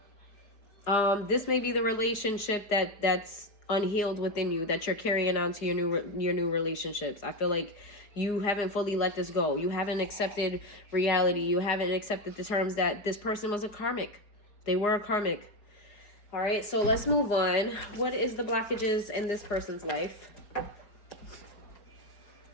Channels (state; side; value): late; right; 4.9 ms